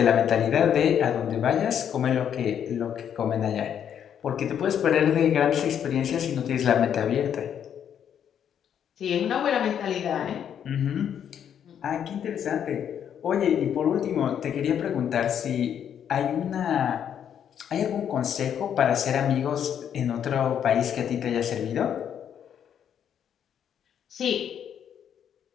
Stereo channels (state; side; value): quieter; right; 8.9 dB